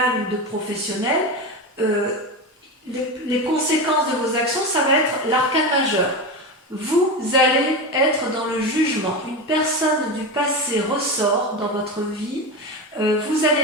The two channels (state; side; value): normal; both; correlation 0.21